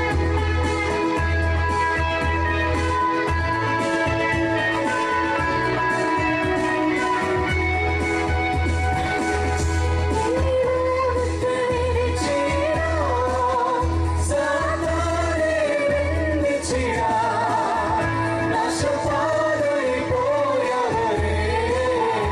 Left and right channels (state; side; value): identical; both; correlation 1.00